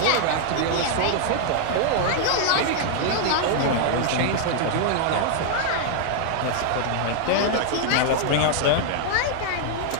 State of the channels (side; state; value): both; different; correlation 0.00